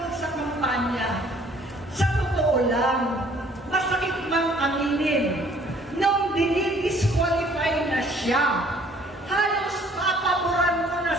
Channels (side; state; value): both; normal; correlation 0.58